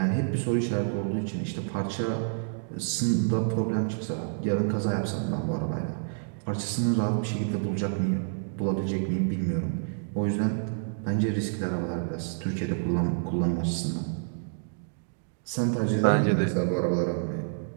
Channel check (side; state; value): left; silent; digital silence